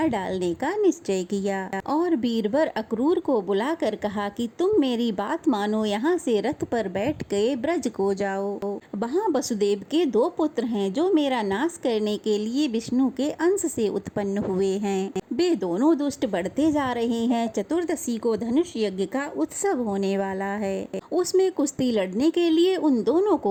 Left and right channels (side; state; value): both; identical; correlation 1.00